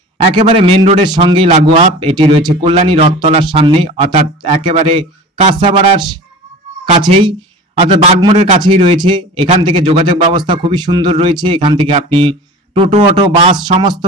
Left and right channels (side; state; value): both; normal; correlation 0.37